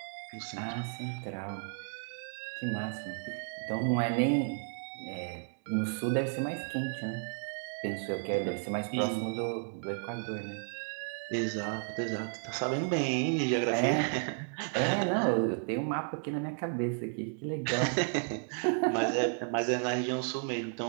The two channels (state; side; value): silent; left; 56 dB below the other